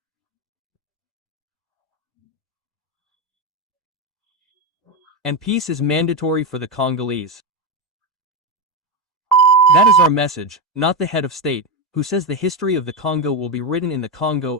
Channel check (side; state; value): both; normal; correlation 0.11